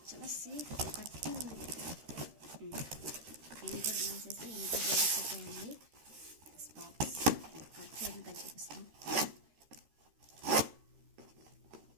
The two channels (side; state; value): left; late; 13 ms